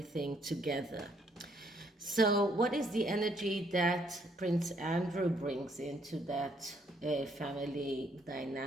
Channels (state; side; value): normal; both; correlation 0.69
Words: together. So what is the energy that Prince Andrew brings into that family